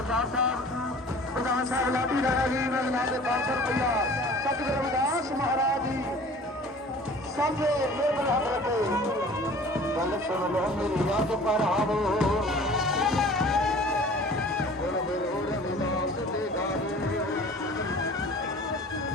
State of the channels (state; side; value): normal; both; correlation 0.46